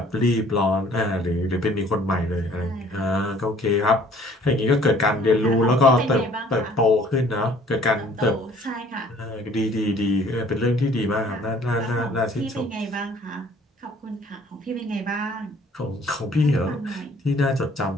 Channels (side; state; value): both; normal; correlation 0.56